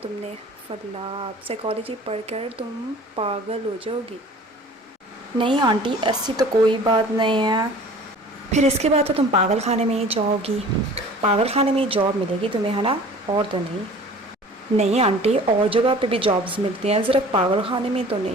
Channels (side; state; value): both; normal; correlation 0.46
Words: फल्लाह, साइकोलॉजी पढ़कर तुम पागल हो जाओगी। नहीं आंटी, ऐसी तो कोई बात नहीं है। फिर इसके बाद तो तुम पागल खाने में ही जाओगी। पागल खाने में ही जॉब मिलेगी तुम्हें, है ना? और तो नहीं। नहीं आंटी, और जगह पे भी जॉब्स मिलती हैं, सिर्फ पागल खाने में तो